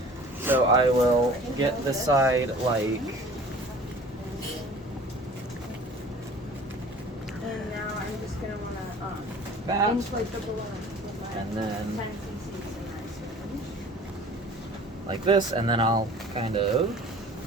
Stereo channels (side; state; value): both; normal; correlation 0.46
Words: So I will get this side like. And now I'm just going to want to that, inflate the balloon. and then like this, and then I'll kind of